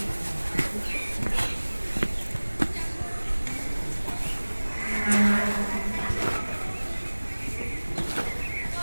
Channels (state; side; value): inverted; both; correlation -1.00